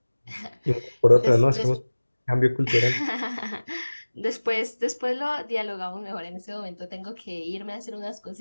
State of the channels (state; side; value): inverted; both; correlation -1.00